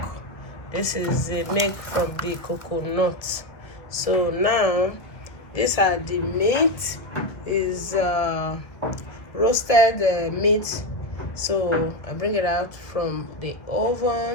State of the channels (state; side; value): late; right; 1.4 ms